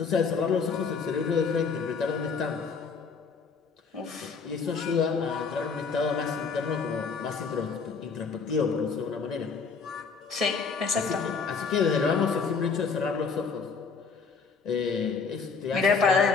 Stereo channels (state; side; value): quieter; right; 5.2 dB